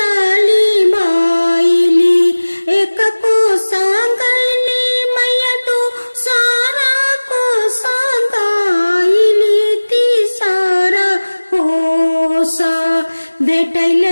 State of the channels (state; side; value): inverted; both; correlation -1.00